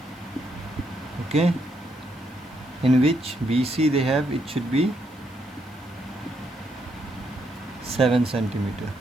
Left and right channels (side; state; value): left; noise; hiss, 29 dB below the sound